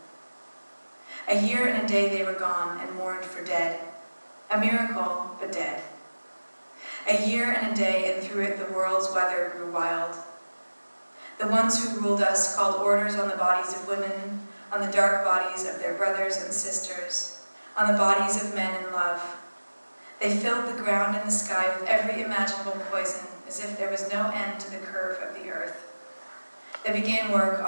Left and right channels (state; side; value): inverted; both; correlation -1.00